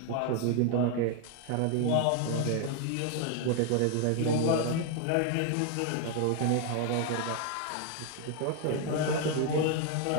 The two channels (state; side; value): different; both; correlation 0.00